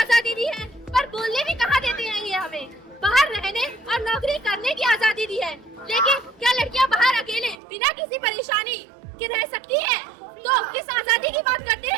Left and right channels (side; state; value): left; drops out; at 7.6 s